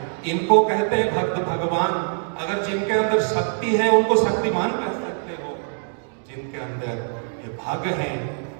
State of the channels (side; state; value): left; silent; digital silence